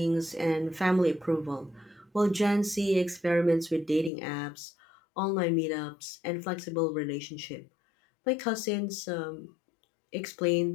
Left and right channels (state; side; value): drops out; right; at 4.1 s